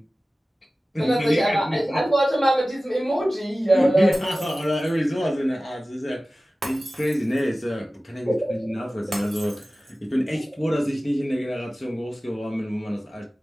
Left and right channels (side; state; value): both; normal; correlation 0.97